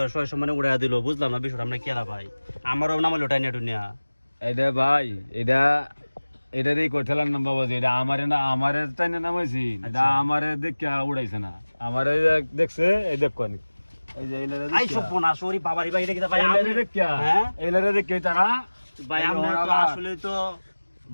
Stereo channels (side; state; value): both; inverted; correlation -1.00